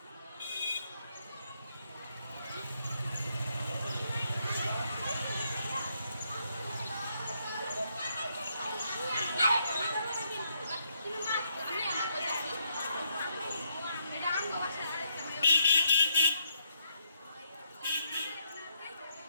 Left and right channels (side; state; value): both; inverted; correlation -0.76